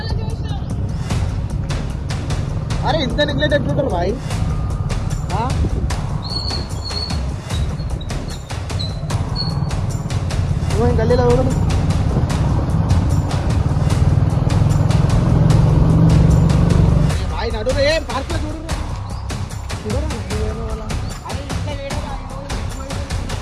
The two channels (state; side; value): identical; both; correlation 1.00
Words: అరే ఇంత నెగ్లెక్ట్ ఎట్లుంటారు బాయ్? గల్లీలో చూడండి. ఆయన అడుగు ఏం పార్క్ లో చూడు.